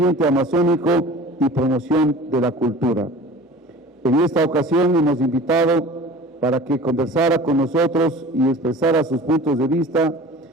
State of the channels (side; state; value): both; normal; correlation 0.41